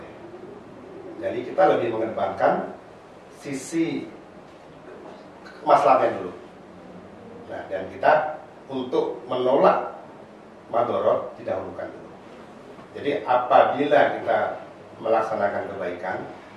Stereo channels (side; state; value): both; identical; correlation 1.00